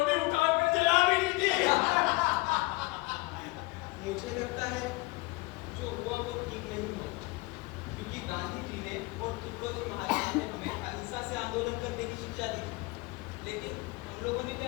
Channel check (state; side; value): quieter; right; 24.1 dB